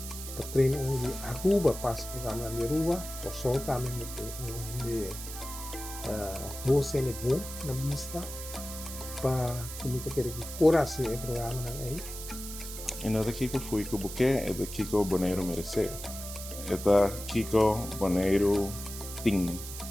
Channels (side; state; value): right; noise; hiss, 10 dB below the sound